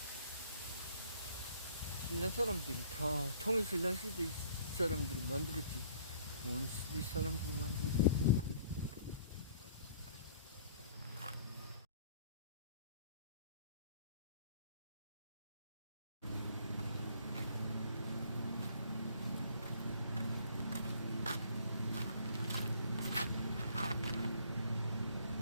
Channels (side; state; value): both; inverted; correlation -0.57